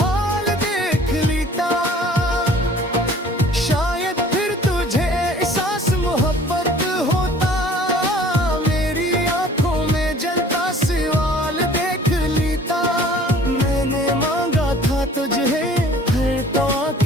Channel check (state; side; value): normal; both; correlation 0.51